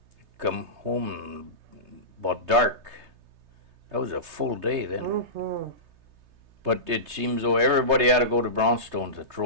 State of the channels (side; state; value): left; late; 3.3 ms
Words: come home about dark. That was a full day then. Mm-hmm. But it seems though everybody had to go to Brownstone to